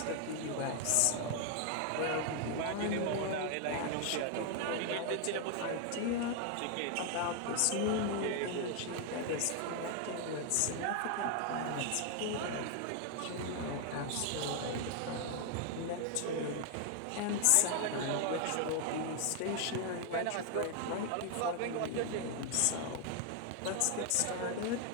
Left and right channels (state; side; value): different; both; correlation 0.00